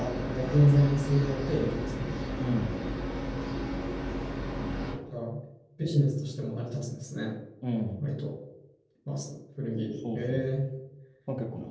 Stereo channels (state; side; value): identical; both; correlation 1.00